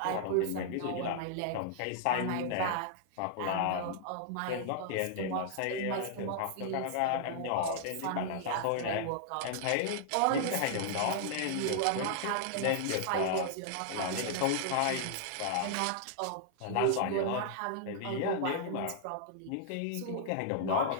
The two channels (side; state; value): both; different; correlation -0.01